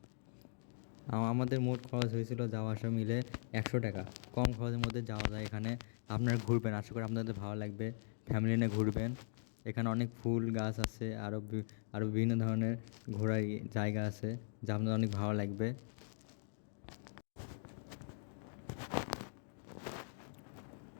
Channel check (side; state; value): right; silent; digital silence